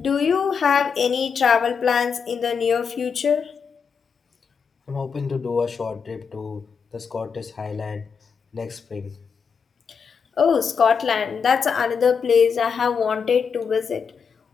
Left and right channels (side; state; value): right; quieter; 6.2 dB